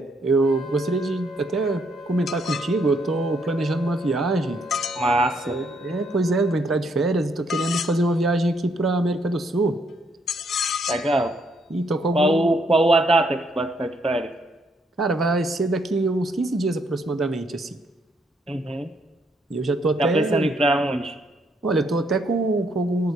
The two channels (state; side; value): normal; both; correlation 0.72